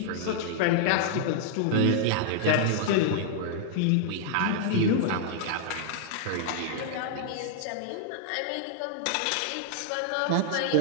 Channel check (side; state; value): both; different; correlation -0.01